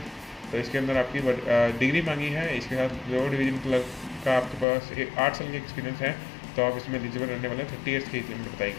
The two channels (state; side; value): drops out; right; at 4.7 s